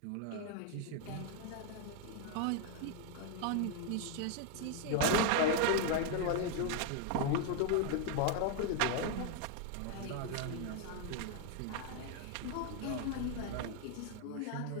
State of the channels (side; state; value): both; different; correlation 0.00